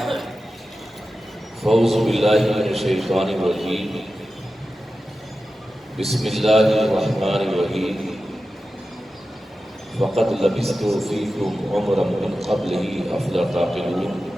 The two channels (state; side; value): normal; both; correlation 0.93